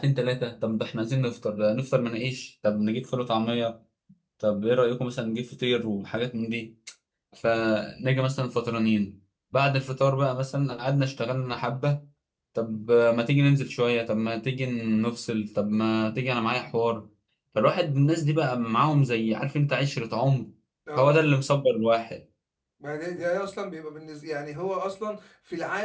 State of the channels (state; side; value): identical; both; correlation 1.00